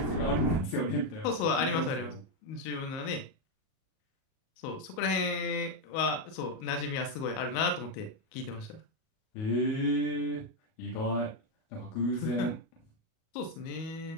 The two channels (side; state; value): right; late; 37 ms